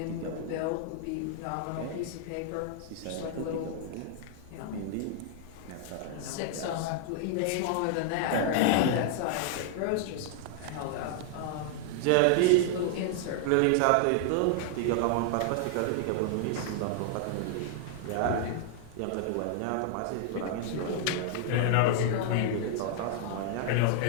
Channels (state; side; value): different; both; correlation -0.01